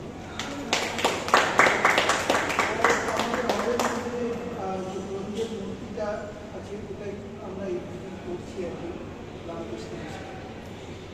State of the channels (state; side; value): identical; both; correlation 1.00